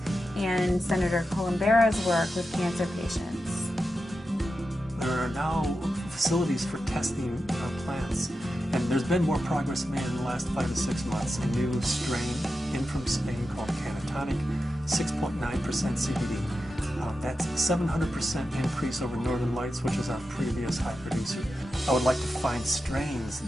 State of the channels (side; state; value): both; normal; correlation 0.90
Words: and Senator Columbera's work with cancer patients. There are now facilities for testing plants, and there's been more progress made in the last 5 to 6 months. A new strain in from Spain called Cannatonic, 6.9% CBD. That's a 700% increase over Northern Lights, which is our previous high producer. I would like to find strains